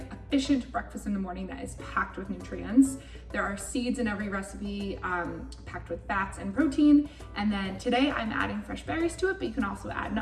efficient breakfast in the morning that is packed with nutrients. There are seeds in every recipe, packed with fats and protein. And then today I'm adding fresh berries to it, but you can also add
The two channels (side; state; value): both; identical; correlation 1.00